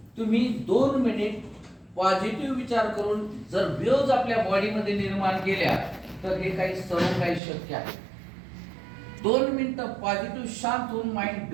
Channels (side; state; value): left; drops out; at 7.4 s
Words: तुम्ही 2 मिनिट पॉझिटिव्ह विचार करून जर वेव्ज आपल्या बॉडीमध्ये निर्माण केल्या तर हे काही सर्व काही शक्य आहे. 2 मिनिटं पॉझिटिव्ह शांत होऊन माइंड